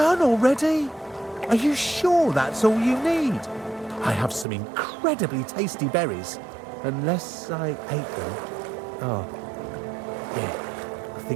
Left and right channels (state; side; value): drops out; left; at 4.5 s